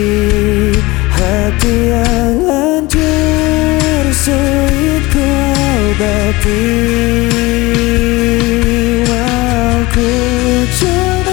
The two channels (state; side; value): quieter; right; 21.6 dB